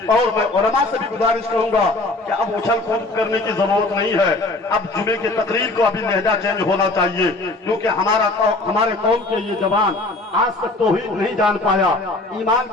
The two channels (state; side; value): quieter; right; 3.0 dB